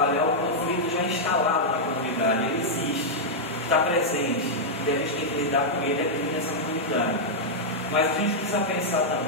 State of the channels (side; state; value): both; normal; correlation -0.05